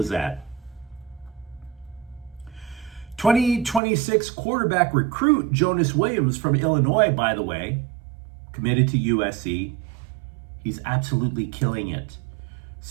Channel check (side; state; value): left; drops out; at 3.8 s